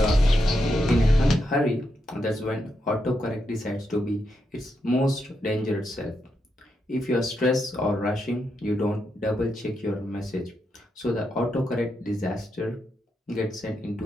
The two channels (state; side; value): normal; both; correlation 0.83